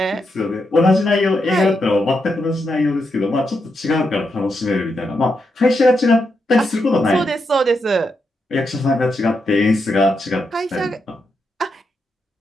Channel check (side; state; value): both; normal; correlation 0.83